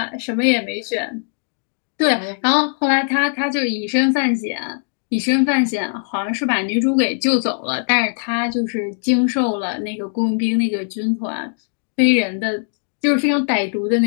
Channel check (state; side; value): silent; right; 64 dB below the other